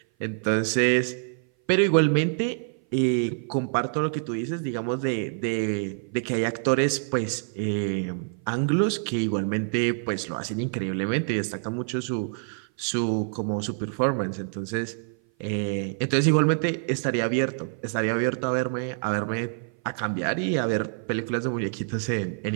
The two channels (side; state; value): left; silent; 57 dB below the other